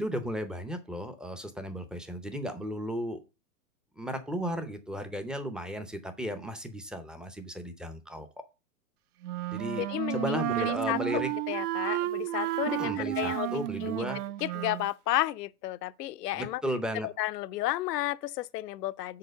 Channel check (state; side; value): normal; both; correlation 0.22